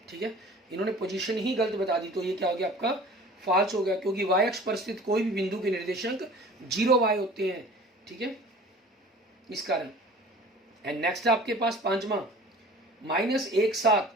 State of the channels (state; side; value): normal; both; correlation 0.44